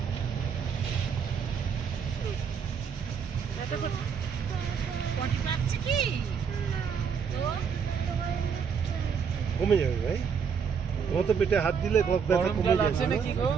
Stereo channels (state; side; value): quieter; left; 6.6 dB